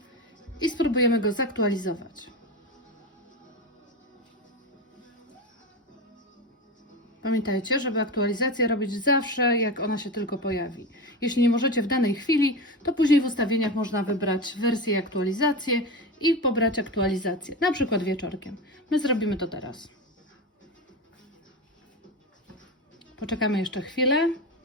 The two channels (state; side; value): normal; both; correlation 0.21